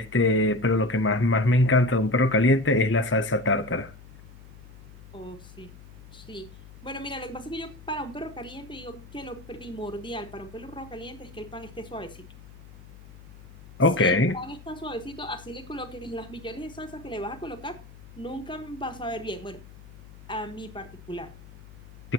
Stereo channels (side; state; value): left; noise; hum, 19 dB below the sound